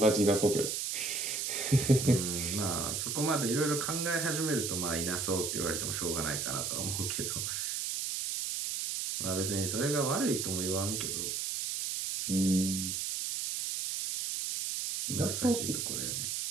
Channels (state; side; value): noise; right; hiss, 2 dB below the sound